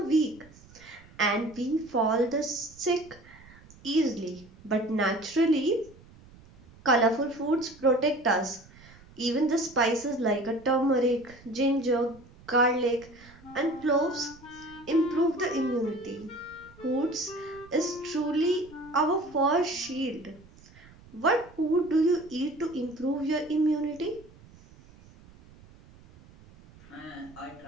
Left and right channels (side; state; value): right; noise; rumble, 23 dB below the sound